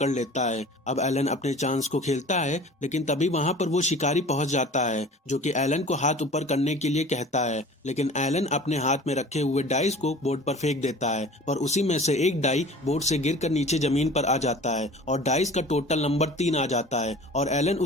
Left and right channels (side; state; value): both; normal; correlation 0.43